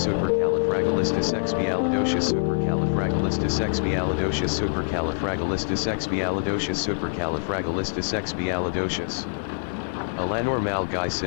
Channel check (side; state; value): right; silent; 59 dB below the other